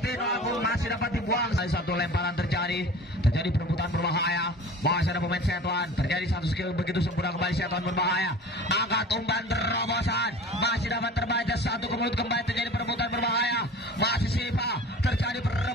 Agung masih dapat dibuang. Satu lemparan terjadi perebutan berbahaya. Masih ada pemain Setuan. Terjadi satu skill begitu sempurna kembali Setuan berbahaya. Angkat umpan terobosan. Masih dapat terbaca, satu ke mulut kembali, terjadi perebutan berbahaya. Masih Sipa, terjadi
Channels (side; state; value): both; normal; correlation 0.40